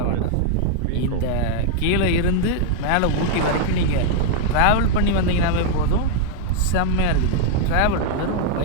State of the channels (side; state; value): both; different; correlation 0.00